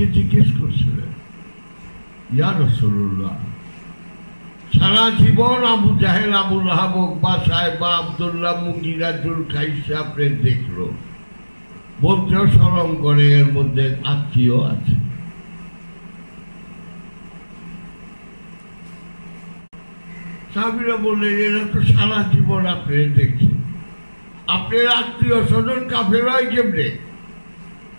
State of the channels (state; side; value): inverted; both; correlation -1.00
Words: জিজ্ঞেস করছিলেন, ইয়া রাসূলুল্লাহ, সারা জীবন আবু জাহেল, আবু লাহাব, উকবা, সাহেবা, আব্দুল্লাহ, মুগীরা, যুলকাইসা আপনি দেখলো, বলতেও শরম করে, এর মধ্যে আত্মীয় আছে। সাহাবীরা বললেন, এরা তো সারা জীবন আপনি দেখছেন, আপনার আত্মীয় স্বজন কাফের হয় কেমনে?